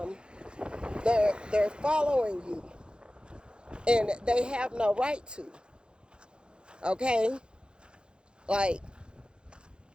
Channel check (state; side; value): late; left; 0.051 ms